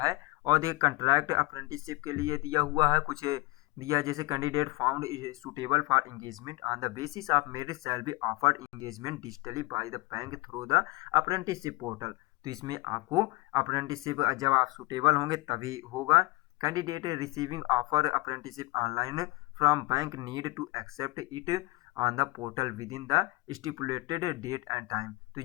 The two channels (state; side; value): quieter; right; 22.6 dB